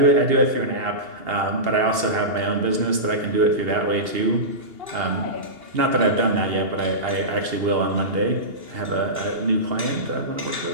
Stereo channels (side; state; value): left; late; 2.8 ms